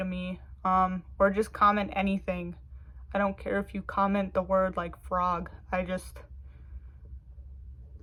me, or just comment anything. I don't care if you comment the word like frog. I just,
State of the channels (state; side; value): identical; both; correlation 1.00